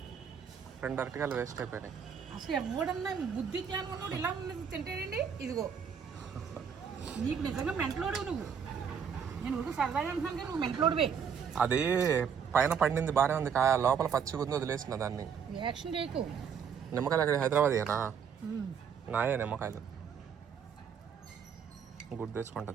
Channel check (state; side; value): quieter; left; 7.2 dB